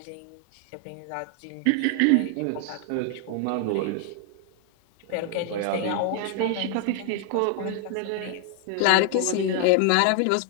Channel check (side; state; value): both; different; correlation 0.00